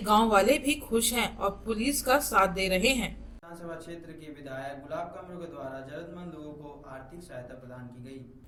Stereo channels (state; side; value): identical; both; correlation 1.00